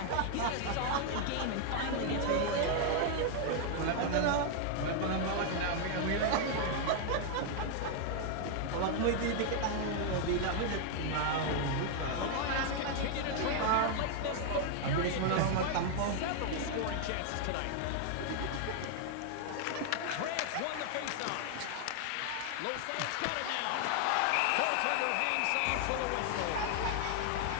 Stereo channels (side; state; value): both; different; correlation 0.00